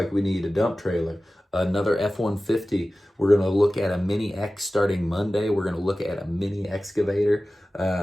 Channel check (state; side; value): normal; both; correlation 0.96